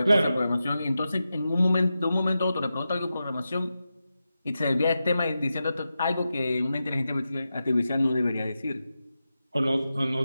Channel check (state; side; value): inverted; both; correlation -0.91